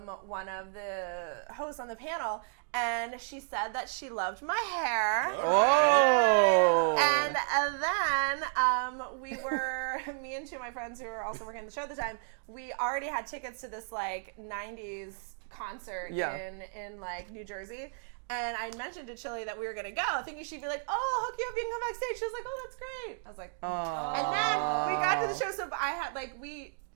one of the hosts on the panel. And she said that she loved my hair. Oh. And then me and two of my friends who were also working the show at the time, we already had tickets to this 90s concert in New Jersey. And I mentioned to Chili that we were going to go, thinking she'd be like, oh, I'll hook you up, you can come backstage. She was like, oh, that's great. I was like, And then we got to the show, so I had,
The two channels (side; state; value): left; silent; digital silence